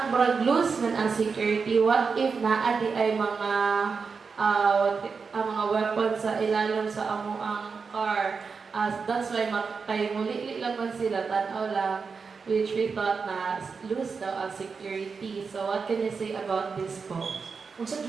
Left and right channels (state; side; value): quieter; left; 5.2 dB